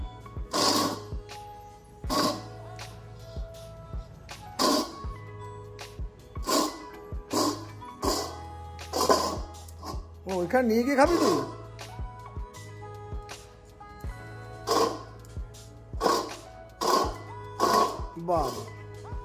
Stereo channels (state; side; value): identical; both; correlation 1.00